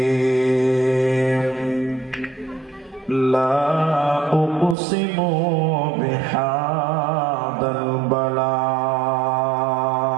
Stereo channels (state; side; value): drops out; left; at 4.8 s